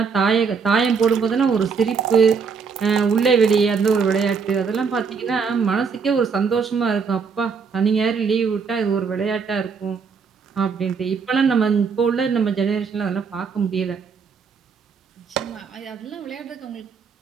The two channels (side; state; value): left; quieter; 5.7 dB